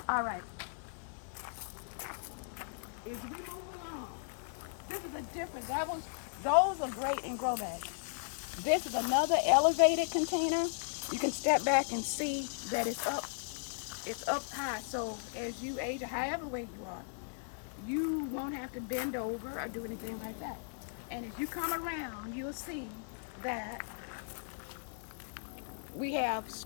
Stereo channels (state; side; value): silent; right; digital silence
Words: All right. As we move along, this is a different. Those are great in grow bags. This is another elevated container. You can step back and see that it's up. It's up high. So as you age, or however weight you are, you won't have to bend over or do anything like that. And if you come around, you'll see that we have